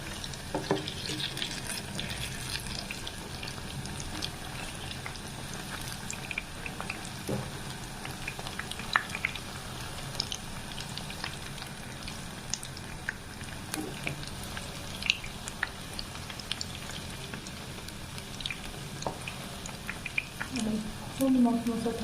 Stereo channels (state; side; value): identical; both; correlation 1.00